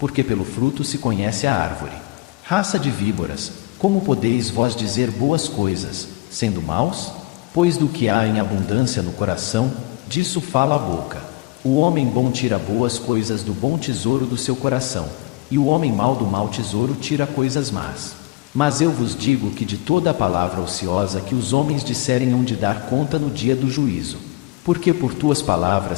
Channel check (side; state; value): right; quieter; 21.7 dB